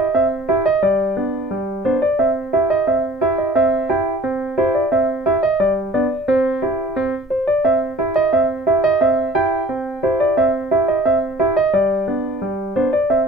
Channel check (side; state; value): both; normal; correlation 0.50